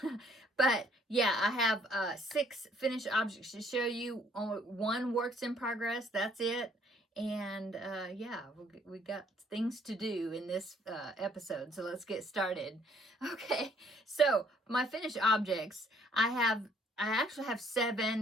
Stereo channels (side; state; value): both; normal; correlation 0.62